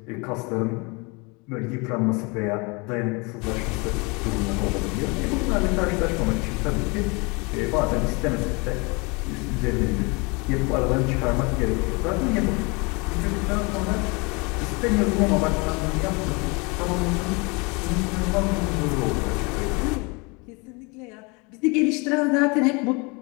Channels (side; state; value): right; quieter; 28.9 dB